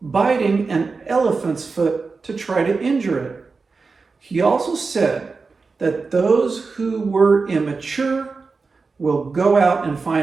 an elephant's foot to try to injure it. He also said that those who were immature will go out and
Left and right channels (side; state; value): left; quieter; 4.4 dB